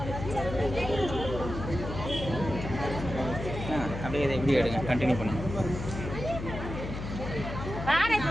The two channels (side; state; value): left; noise; hum, 7 dB below the sound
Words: அப்படியே இதை இப்படி எடுங்க, கண்டினியூ பண்ணுங்க.